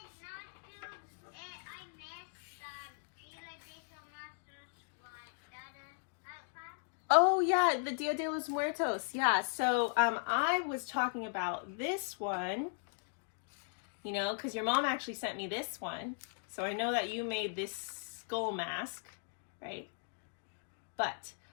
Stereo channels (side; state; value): right; silent; digital silence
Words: Oh yeah, the Dia de los Muertos, yeah. So I was talking about this one, you know, because your mom actually sent me this one. So I know that you made this skull mask, right? But